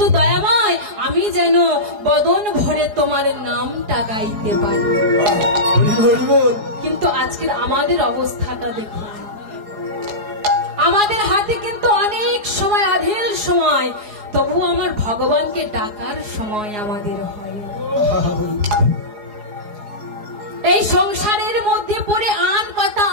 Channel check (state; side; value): late; left; 4.8 ms